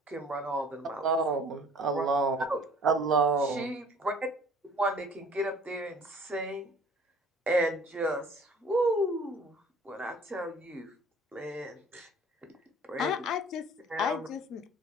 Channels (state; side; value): normal; both; correlation 0.51